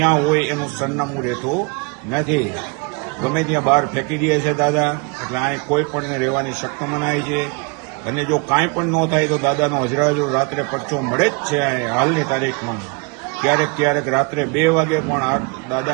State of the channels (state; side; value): quieter; left; 30.6 dB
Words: હોય એનું સરનામું રહેતું નથી. ગમે ત્યાં બહાર ફેંકી દે છે દાદા. એટલે અહીં કોઈ પણ રહેવાની શક્ત મનાય છે અને જો કાંઈ પણ ન થાય તો દાદાનો હજુ રાત્રે પરચો મળે જ છે. હાલની તારીખમાં ક્યારેક રાત્રે 2 વાગે પણ